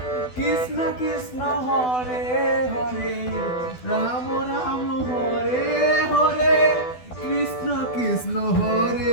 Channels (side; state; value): right; late; 12 ms